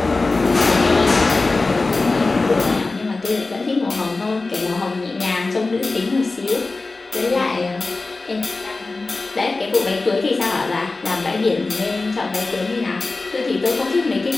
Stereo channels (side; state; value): right; quieter; 3.5 dB